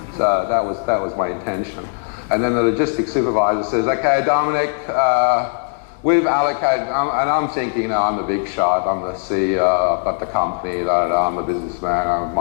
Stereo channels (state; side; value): silent; right; digital silence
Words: So that was my intention. And then the logistics supervisor says, "Okay, Dominic, we've allocated," and I'm thinking, you know, I'm the big shot, I'm the CEO, I've got the company, I'm the businessman,